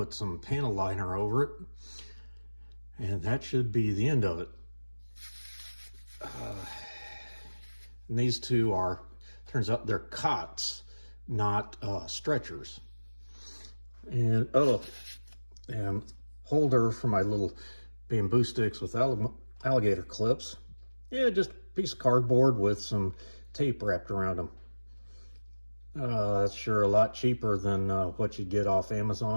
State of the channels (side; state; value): both; inverted; correlation -1.00